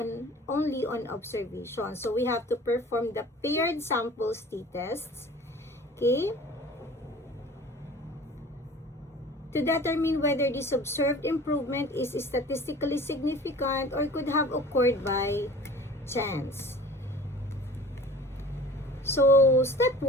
only on observation. So we have to perform the paired samples t-tests. Okay, to determine whether this observed improvement is statistically significant or could have occurred by chance. So step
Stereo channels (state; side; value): normal; both; correlation 0.44